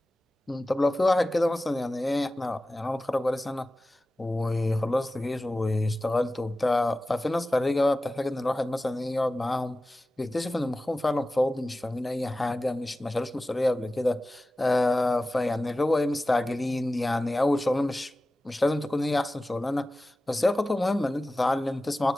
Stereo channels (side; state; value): both; normal; correlation 0.96